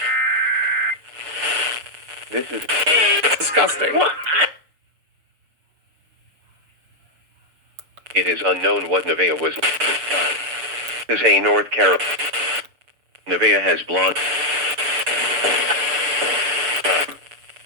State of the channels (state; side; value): late; left; 6.7 ms